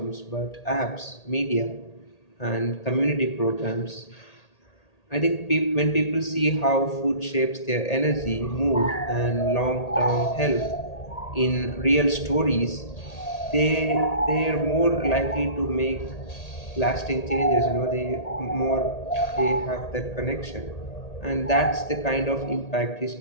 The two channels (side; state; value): right; late; 1.8 ms